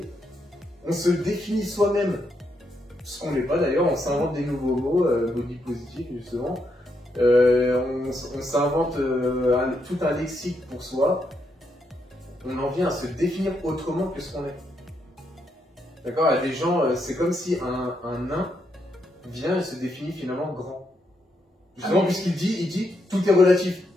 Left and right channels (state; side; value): normal; both; correlation 0.79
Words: On se définit soi-même, ce qu'on n'est pas d'ailleurs, on s'invente des nouveaux mots, body positif justement. On s'invente tout un lexique pour soi. On en vient à se définir autrement que ce qu'on est. D'accord? Il y a des gens, c'est comme si un nain vient et se définit finalement grand. Justement, puisqu'il dit tout est relatif.